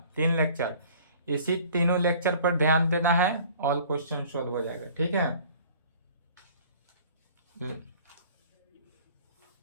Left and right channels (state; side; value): inverted; both; correlation -0.50